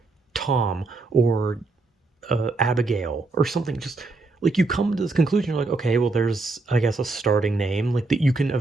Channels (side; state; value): left; quieter; 3.5 dB